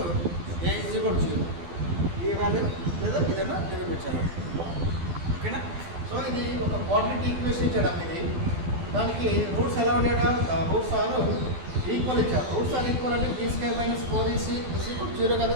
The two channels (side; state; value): left; late; 12 ms